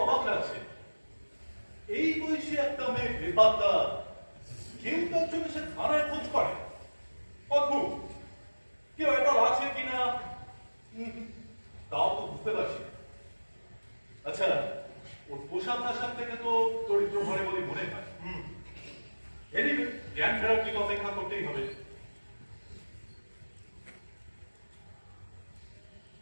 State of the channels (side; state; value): both; inverted; correlation -1.00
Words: অবাক লাগছে। এই বয়সে একটা মেয়ে বেপাত্তা, কেউ তার জন্য সে থানায় খোঁজ করে। অদ্ভুত, কেউ এটা আছে কিনা তাও তো বুঝতে পারছি। আচ্ছা, ওর পোশাক আশাক থেকে তো দরিদ্র ঘরে বলে মনে হয়। এনিওয়ে, জ্ঞান ফেরার দিকে অপেক্ষা করতেই হবে।